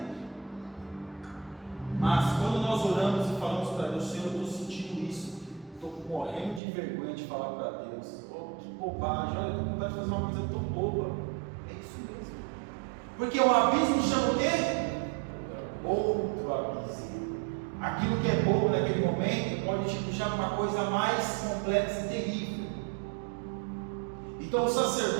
Mas quando nós oramos e falamos para Deus: Senhor, eu estou sentindo isso, estou morrendo de vergonha de falar para Deus, que bobagem, olha, eu estou com vontade de fazer uma coisa tão boba. É isso mesmo. Porque o abismo chama o quê? Outro abismo. Aquilo que é bobo naquele momento pode te puxar para uma coisa mais complexa e terrível. Então o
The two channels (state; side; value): drops out; left; at 6.6 s